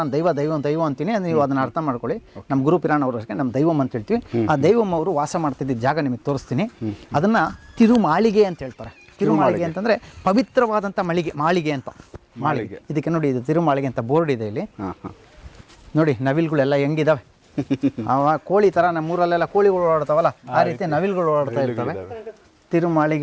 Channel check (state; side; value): identical; both; correlation 1.00